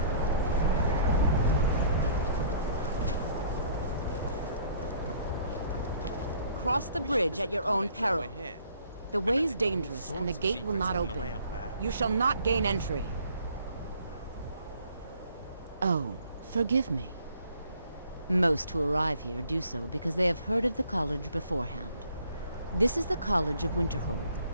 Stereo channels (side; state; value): both; inverted; correlation -0.58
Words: Cross the bridge at your own peril. The way is dangerous and the gate will not open. You shall not gain entry. Oh, forgive me. Most who arrive here do so because they have heard of the college beforehand. This is the College of Winterhold,